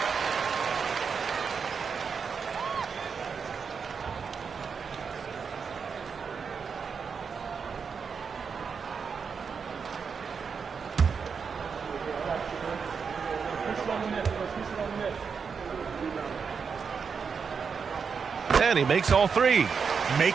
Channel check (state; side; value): quieter; left; 5.9 dB